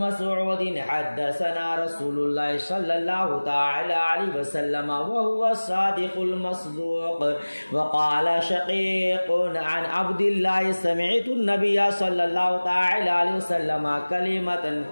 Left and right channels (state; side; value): inverted; both; correlation -1.00